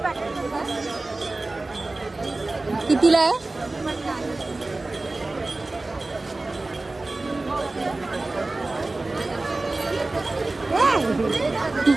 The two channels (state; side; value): quieter; left; 3.1 dB